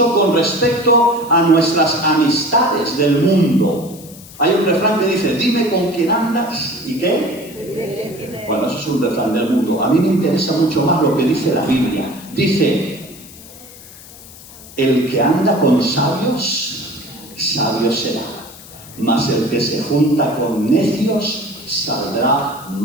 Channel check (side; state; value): left; noise; hiss, 19 dB below the sound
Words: con respecto a nuestras amistades del mundo. Hay un refrán que dice, dime con quién andas y qué. Bueno, eso es un refrán del mundo. A mí me interesa mucho más lo que dice la Biblia. Dice, el que anda con sabios, sabio será, mas el que se junta con necios, saldrá